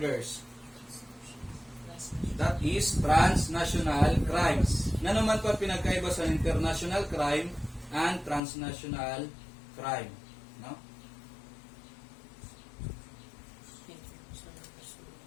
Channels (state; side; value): drops out; right; at 8.4 s